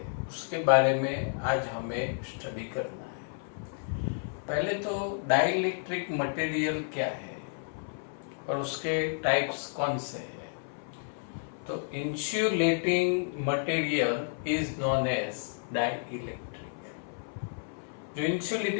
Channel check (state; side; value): silent; right; 57 dB below the other